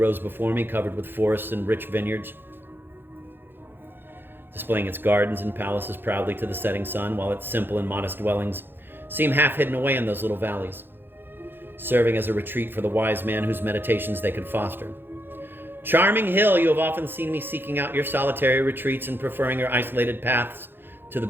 before me, covered with forests and rich vineyards, displaying its gardens and palaces proudly to the setting sun, while its simple and modest dwellings seem half hidden away in those little valleys, serving as a retreat for the wise man whose meditations they could foster. Charming hill, you have often seen me seeking out your solitary retreats and preferring your isolated paths to the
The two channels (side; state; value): left; late; 0.10 ms